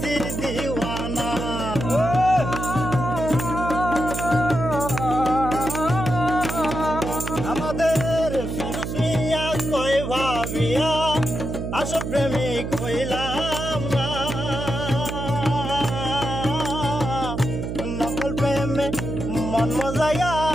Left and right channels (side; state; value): right; noise; hum, 5 dB below the sound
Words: দিওয়ানা। আমাদের ফিরুজ মিয়া কই ভাবিয়া আসল প্রেমিক হইলাম না। নকল প্রেমে মন মজাইয়া